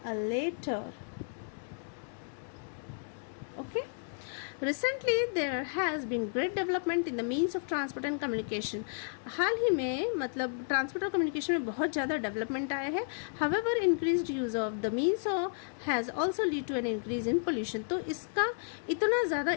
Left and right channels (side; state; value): right; silent; 56 dB below the other